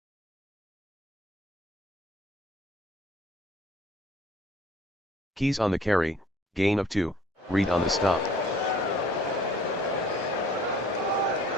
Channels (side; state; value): both; normal; correlation 0.55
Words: Keys on the carry, gain of 2, Reed on the stop.